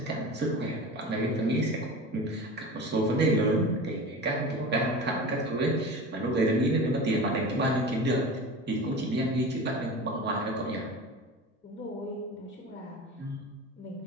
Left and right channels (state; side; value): normal; both; correlation 0.33